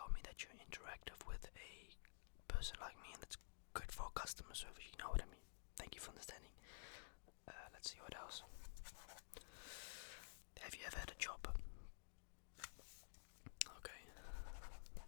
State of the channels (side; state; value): right; silent; digital silence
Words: me that you're interactive with a person like me, and that's good for customer service, you know what I mean. Thank you for understanding. Let's see what else. Have you ever had a job? Okay.